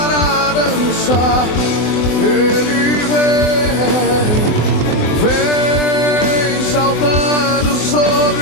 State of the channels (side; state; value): right; late; 24 ms